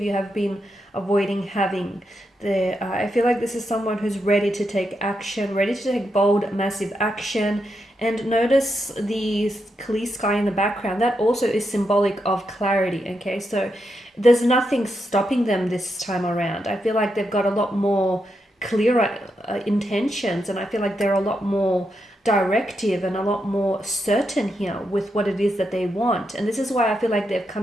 you have been avoiding having. I feel like this is someone who's ready to take action, ready to take bold, massive action. And notice the clear sky in the background. That also is symbolic of clarity, okay? So there's nothing stopping them this time around. I feel like they've got a lot more clearer intentions, and I feel like they're a lot more directive and a lot more certain here with what it is that they want. And this is why I feel like they're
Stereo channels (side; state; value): both; normal; correlation 0.84